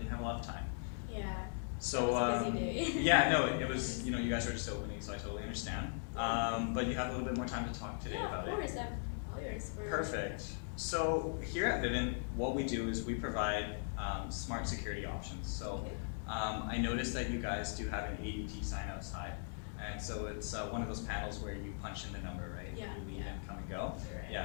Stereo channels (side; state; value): right; silent; digital silence